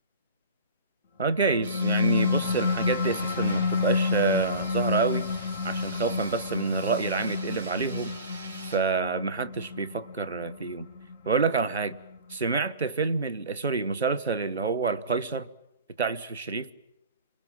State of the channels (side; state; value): both; inverted; correlation -0.39